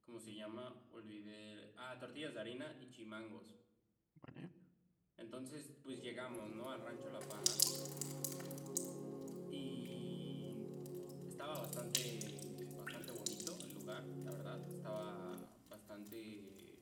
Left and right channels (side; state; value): both; identical; correlation 1.00